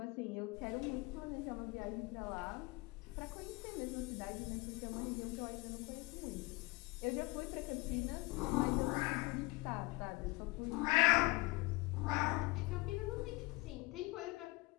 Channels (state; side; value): quieter; right; 23.1 dB